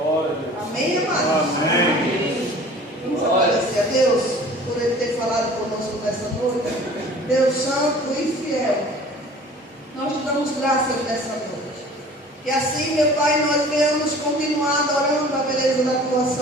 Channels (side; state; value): both; normal; correlation 0.46